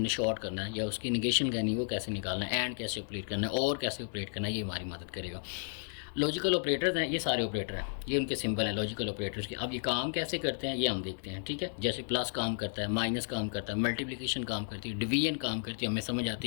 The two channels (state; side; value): silent; right; digital silence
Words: शॉर्ट करना है या उसकी निगेशन करनी है, वो कैसे निकालना है, एंड कैसे ऑपरेट करना है और कैसे ऑपरेट करना है, ये हमारी मदद करेगा। लॉजिकल ऑपरेटर्स हैं, ये सारे ऑपरेटर हैं, ये उनके सिंबल हैं लॉजिकल ऑपरेटर्स के। अब ये काम कैसे करते हैं ये हम देखते हैं, ठीक है। जैसे प्लस काम करता है, माइनस काम करता है, मल्टीप्लिकेशन काम करती है, डिवीजन काम करती है, हमें समझ आती